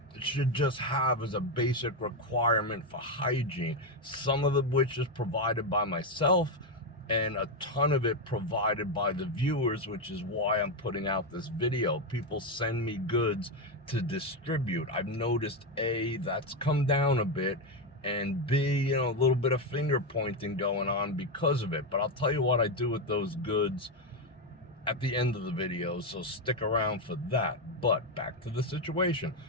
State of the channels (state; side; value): normal; both; correlation 0.07